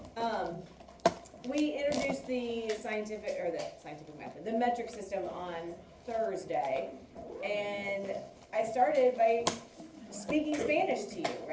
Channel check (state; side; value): identical; both; correlation 1.00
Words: We introduced the scientific method, the metric system on Thursday, and I started by speaking Spanish to you,